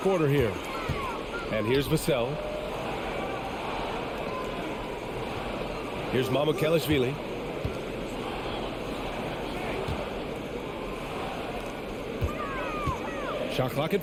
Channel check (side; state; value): both; identical; correlation 1.00